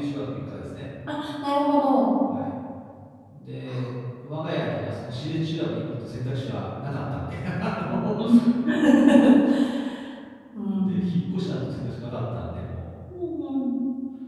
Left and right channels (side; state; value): both; identical; correlation 1.00